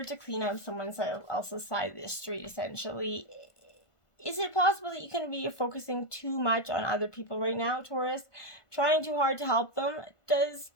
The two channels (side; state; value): right; late; 1.5 ms